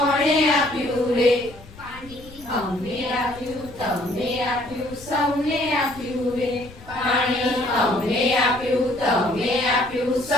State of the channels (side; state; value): left; noise; rumble, 19 dB below the sound